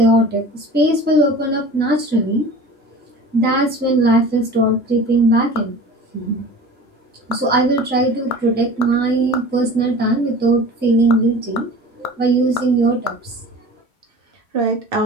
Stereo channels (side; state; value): both; normal; correlation 0.39